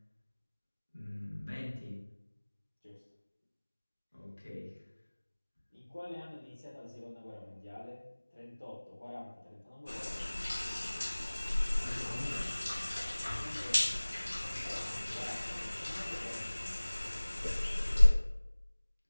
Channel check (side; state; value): both; inverted; correlation -1.00